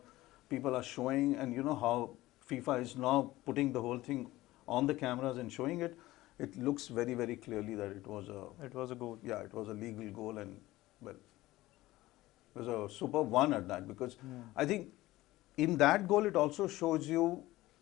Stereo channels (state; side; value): quieter; right; 17.5 dB